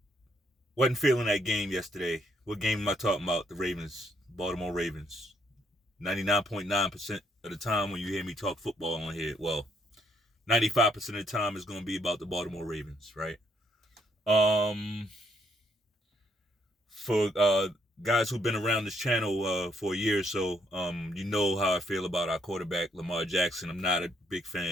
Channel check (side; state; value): both; normal; correlation 0.71